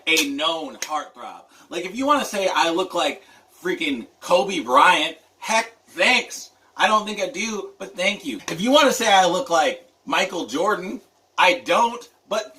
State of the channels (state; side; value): identical; both; correlation 1.00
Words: a known heartthrob. Like if you want to say I look like freaking Kobe Bryant, heck, thanks. I don't think I do, but thank you. If you want to say I look like Michael Jordan, I don't, but